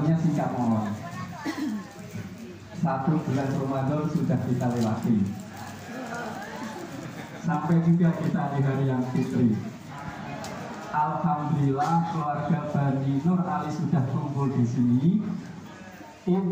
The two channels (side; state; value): both; identical; correlation 1.00